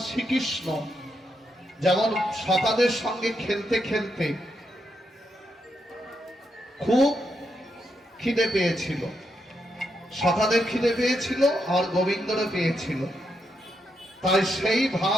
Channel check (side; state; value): both; normal; correlation 0.82